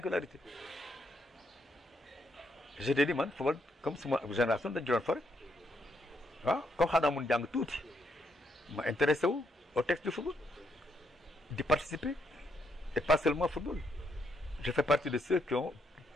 je te dis man football comme suma génération dañu doon fa rek waaw comme xanaa mun jàng tuuti ma intéressé wu au texte du football di participer et pas seulement football je fais partie de ceux qui ont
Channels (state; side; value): normal; both; correlation 0.76